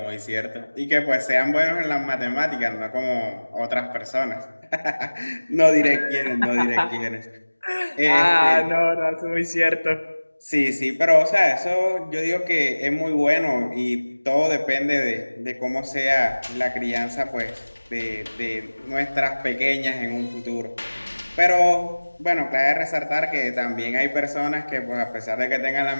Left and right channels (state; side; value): inverted; both; correlation -1.00